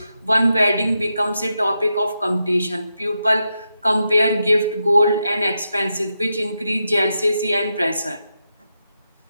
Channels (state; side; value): inverted; both; correlation -0.86